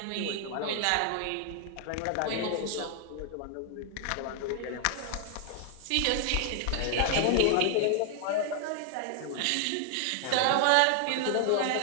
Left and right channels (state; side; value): different; both; correlation 0.00